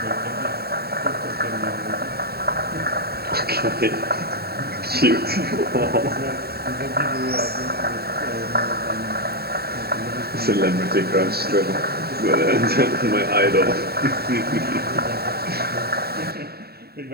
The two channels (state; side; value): late; left; 0.46 ms